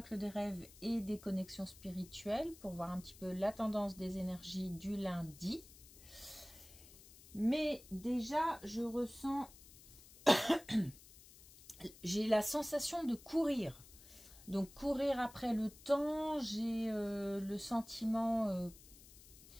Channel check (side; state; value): left; noise; hiss, 20 dB below the sound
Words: des rêves et des connexions spirituelles pour voir un petit peu la tendance des énergies du lundi. Mais déjà, je ressens... j'ai la sensation de courir. Donc courir après le temps, j'ai le sentiment...